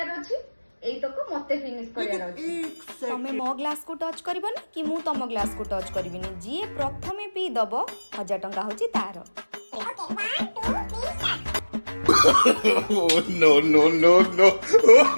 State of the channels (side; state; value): both; inverted; correlation -1.00